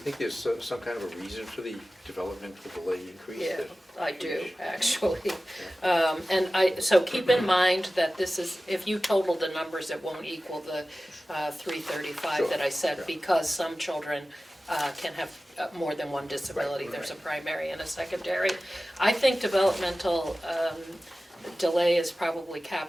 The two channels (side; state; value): both; normal; correlation 0.96